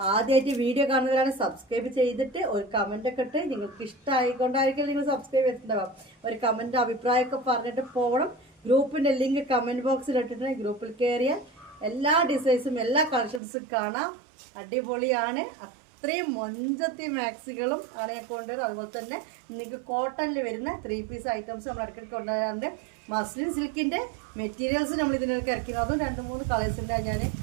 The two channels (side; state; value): left; drops out; at 13.4 s